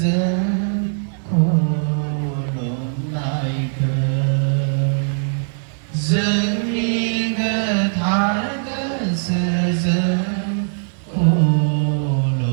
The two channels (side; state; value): left; silent; 64 dB below the other